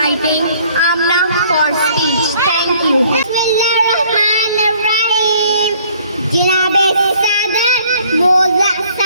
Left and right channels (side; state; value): both; inverted; correlation -0.58